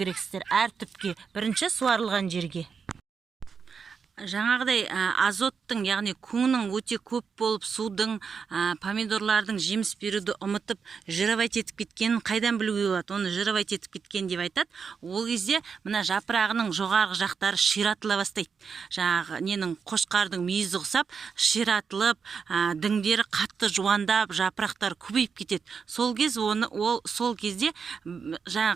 керексіздер. Әр түпке, бірінші суарылған жерге. Жаңағыдай азоттың, яғни көңнің өте көп болып, судың, помидорлардың жеміс беруді ұмытып, жировать етіп кеткенін қайдан білуге болады? Оны жировать етіп кеткен деп айтады. Ол кезде мына жапырағының жоғарғы жақтары ширатыла бастайды. Жаңағы ненің қошқардың мүйізі ұқсап, ширатылып, діңдері қатты жуандап, жапырақтар көбейіп кетеді. Сол кезде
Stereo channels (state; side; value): quieter; left; 5.9 dB